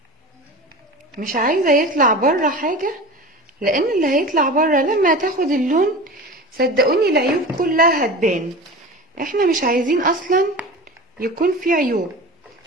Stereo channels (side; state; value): both; normal; correlation 0.33